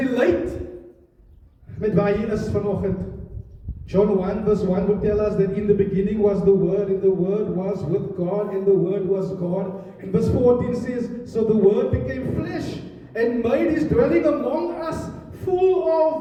met waar hy is vanoggend. John 1 verse 1 would tell us that in the beginning was the Word, and the Word was with God, and the Word was God. And verse 14 says, so the Word became flesh and made his dwelling among us, full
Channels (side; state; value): both; identical; correlation 1.00